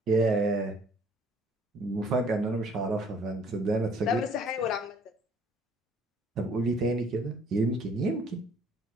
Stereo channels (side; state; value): both; normal; correlation 0.58